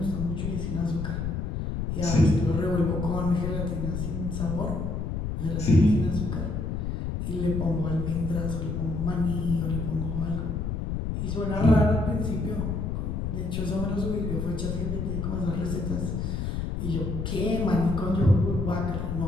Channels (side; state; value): left; noise; rumble, 2 dB below the sound